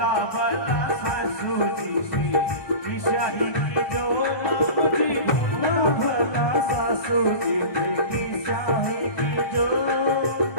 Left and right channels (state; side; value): late; right; 1.5 ms